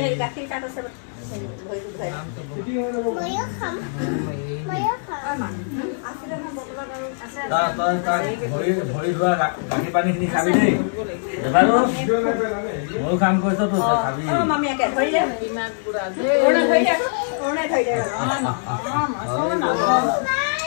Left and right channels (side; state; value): right; silent; digital silence